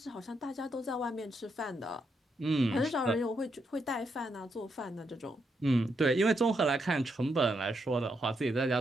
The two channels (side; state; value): both; normal; correlation 0.80